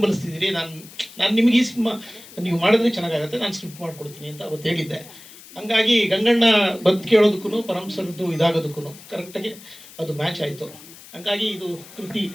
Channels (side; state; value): left; noise; hiss, 19 dB below the sound